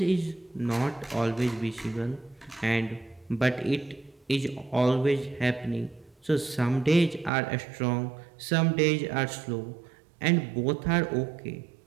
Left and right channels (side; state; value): left; drops out; at 7.3 s